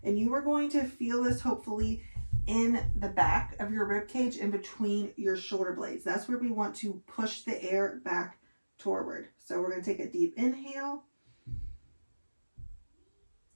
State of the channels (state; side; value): inverted; both; correlation -1.00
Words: and you are going to feel this hopefully in the back of your rib cage in between your shoulder blades. That's where we want to push the air back toward. So we're going to take a deep inhale.